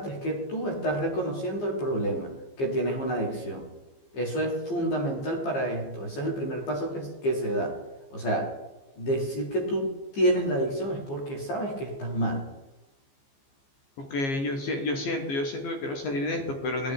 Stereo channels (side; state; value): right; late; 15 ms